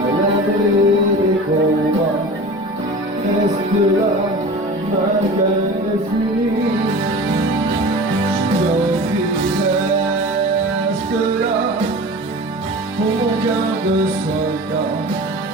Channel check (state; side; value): normal; both; correlation 0.36